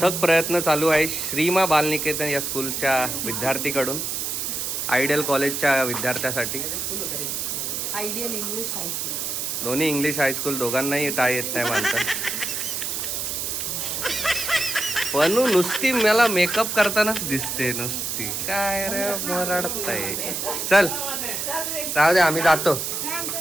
प्रयत्न चालू आहे श्रीमा बालनिकेतन या स्कूलच्या विद्यार्थीकडून. आयडियल कॉलेजच्या विद्यार्थ्यासाठी. Ideal English high school. दोन्ही इंग्लिश हायस्कूल, दोघांनाही टाय येत नाही बांधता. पण नुसती मला मेकअप करतानाच दिसते नुसती. काय रे मरडताय. चल जाऊ दे, आम्ही जातो.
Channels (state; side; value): noise; right; hiss, 2 dB below the sound